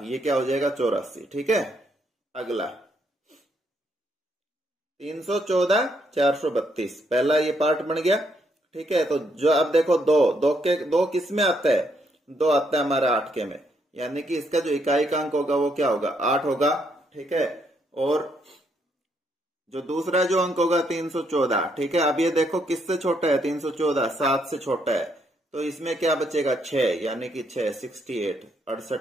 ये क्या हो जाएगा 84। ठीक है, अगला 314, 432, पहला ये पार्ट बन गया। ठीक है, तो जो अब देखो 2 किस में आता है, 2 आता है हमारा 8 के में, यानी कि इसका जो इकाई का अंक होगा वो क्या होगा, 8 होगा। ठीक है, और जो दूसरा जो अंक होगा 314। ठीक है, अब ये देखो किससे छोटा है, 314 7 से छोटा है, तो इसमें क्या बचेगा 6, यानी कि 6 68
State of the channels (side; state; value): both; normal; correlation 0.74